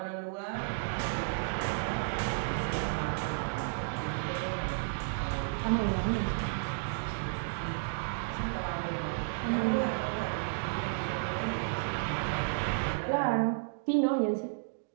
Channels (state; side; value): silent; left; digital silence